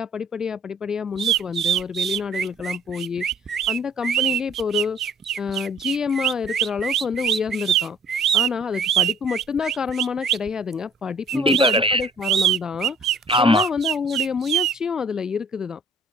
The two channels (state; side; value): normal; both; correlation 0.54